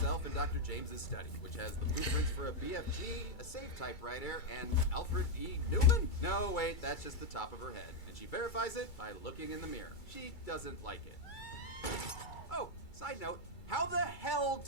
in Dr. James's study, which has the blueprints for a BFG, a safe typewriter, and Alfred E. Newman? No, wait, that's just the top of her head. And she verifies it by looking in the mirror. She doesn't like it. Oh, side note. How the hell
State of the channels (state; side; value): late; right; 2.3 ms